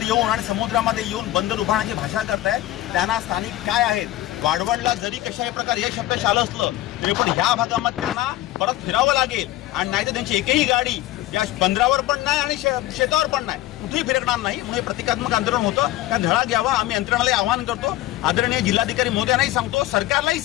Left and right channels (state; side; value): quieter; right; 15.4 dB